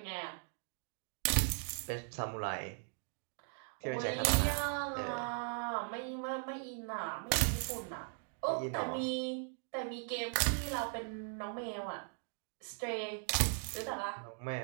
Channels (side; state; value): left; silent; 52 dB below the other